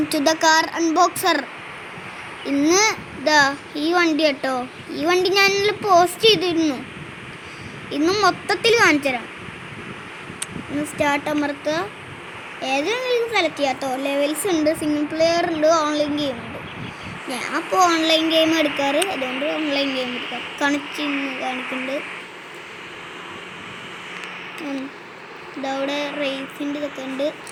to the car unboxer. ഇന്ന് ഈ വണ്ടി കേട്ടോ. ഈ വണ്ടി ഞാൻ പോസ്റ്റ് ചെയ്തിരുന്നു. ഇന്ന് മൊത്തത്തിൽ കാണിച്ചു തരാം. ഇന്ന് സ്റ്റാർട്ട് അമർത്തുക. ഏതെങ്കിലും സെലക്ട് ചെയ്യാം കേട്ടോ. ലെവൽസ് ഉണ്ട്, സിംഗിൾ പ്ലെയർ ഉണ്ട്, ഓൺലൈൻ ഗെയിം ഉണ്ട്. ഞാൻ അപ്പോൾ ഓൺലൈൻ ഗെയിം എടുക്കാറ്, അതുകൊണ്ട് ഓൺലൈൻ ഗെയിം എടുക്കാം. കാണിക്കുന്നുണ്ട്. ഇതവിടെ റേസിൻ്റെ ഇതൊക്കെ ഉണ്ട്.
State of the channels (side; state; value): both; identical; correlation 1.00